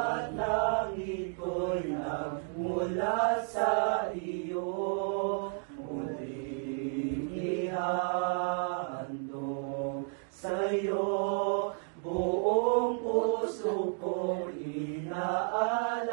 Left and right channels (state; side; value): silent; left; 56 dB below the other